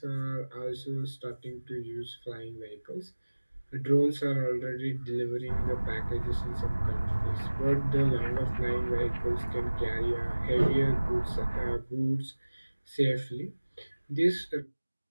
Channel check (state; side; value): inverted; both; correlation -1.00